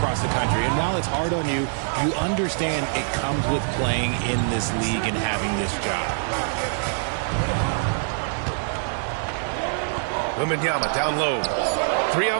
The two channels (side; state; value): left; silent; digital silence